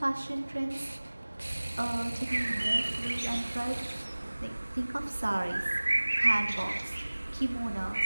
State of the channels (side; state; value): both; inverted; correlation -1.00